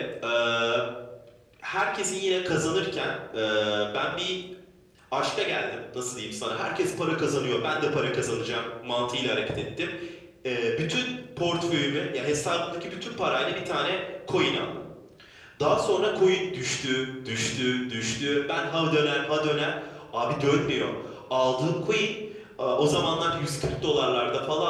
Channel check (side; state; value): both; identical; correlation 1.00